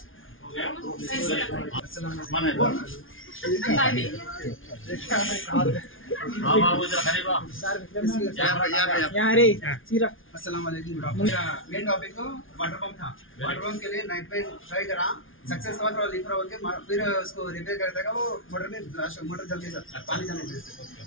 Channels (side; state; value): right; late; 0.58 ms